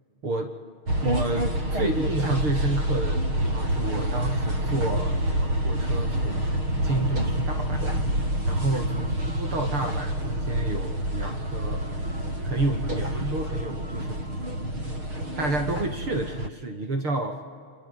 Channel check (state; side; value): late; left; 6.5 ms